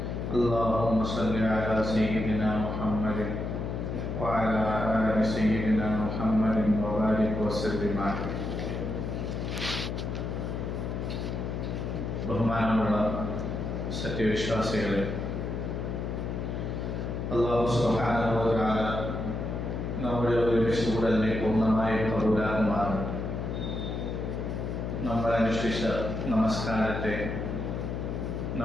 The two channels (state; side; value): noise; left; hum, 3 dB below the sound